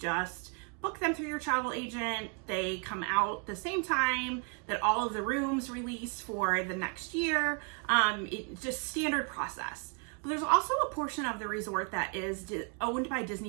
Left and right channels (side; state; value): left; quieter; 38.6 dB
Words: book them through your travel agent. They come out the same time that all of the rooms release for the next year. It's just standard process. But there's also a portion of the resort that is owned by